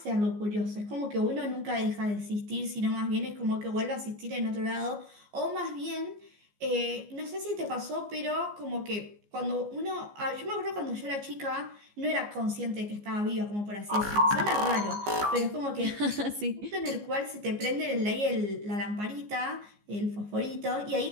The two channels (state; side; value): late; left; 14 ms